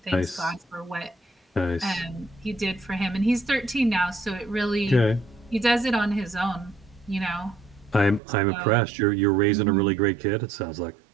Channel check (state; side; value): drops out; left; at 8.2 s